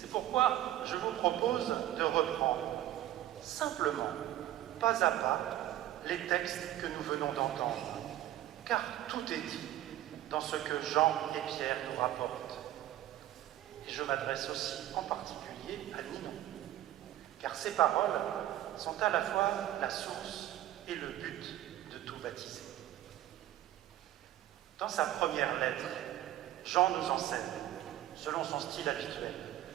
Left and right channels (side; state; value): left; quieter; 13.5 dB